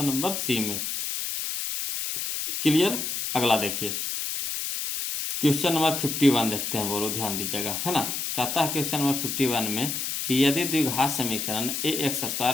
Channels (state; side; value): noise; left; hiss, 3 dB below the sound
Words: नंबर सी में। क्लियर। अगला देखिए क्वेश्चन नंबर 51 देखते हैं, बोलो ध्यान दीजिएगा है ना। कहता है क्वेश्चन नंबर 51 में कि यदि द्विघात समीकरण a x